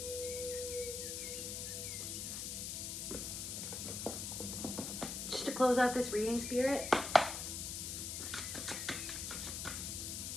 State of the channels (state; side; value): noise; left; hiss, 4 dB below the sound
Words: Just to close out this reading, Spirit.